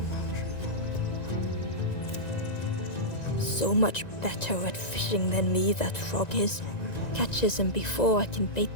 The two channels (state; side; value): late; right; 1.9 ms